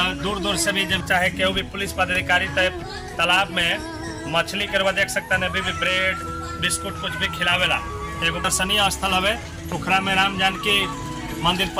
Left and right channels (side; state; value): both; identical; correlation 1.00